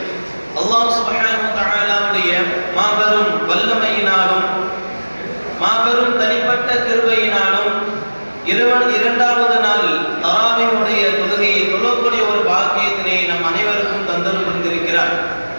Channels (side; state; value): both; inverted; correlation -1.00